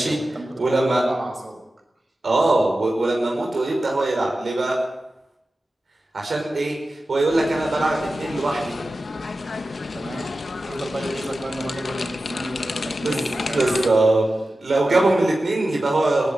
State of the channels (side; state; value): both; normal; correlation 0.94